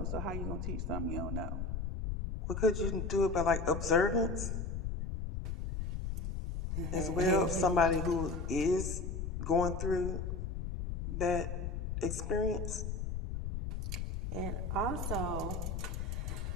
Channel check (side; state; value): left; noise; rumble, 3 dB below the sound